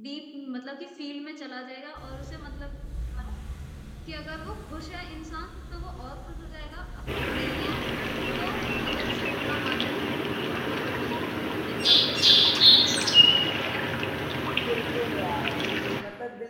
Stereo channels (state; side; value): identical; both; correlation 1.00